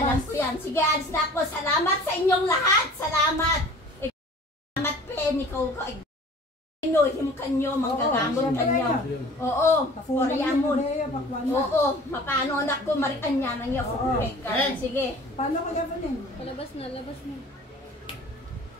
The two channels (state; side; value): normal; both; correlation 0.46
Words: ko yan. Sige, alis na ako. Salamat sa inyong lahat. Salamat. Salamat, Pen. Ikaw ko. Inuhim kanyo, manggagamot kanyo. Oo, Koreamon. Oo, mapano anak ko, marikan niya nang iyo. Sige. Paano ka gabanin? Labas na.